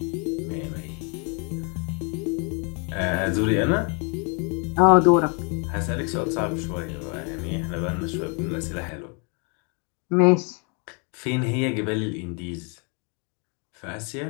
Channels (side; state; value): right; quieter; 35.7 dB